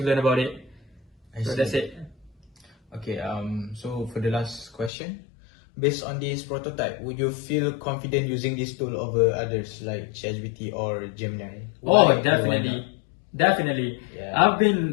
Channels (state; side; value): drops out; right; at 4.9 s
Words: learn about it. So that's it. Okay, so for the last question, based on this prototype, would you feel confident using this tool over others like ChatGPT or Gemini? Oh, definitely. Definitely. Yeah. I've